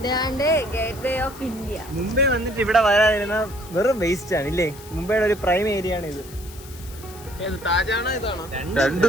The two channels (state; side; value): noise; left; hiss, 18 dB below the sound